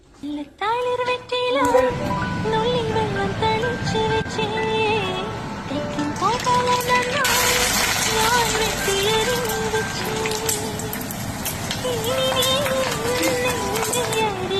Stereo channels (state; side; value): identical; both; correlation 1.00